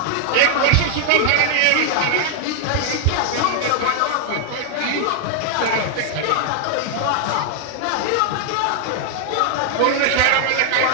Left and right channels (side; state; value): both; different; correlation 0.00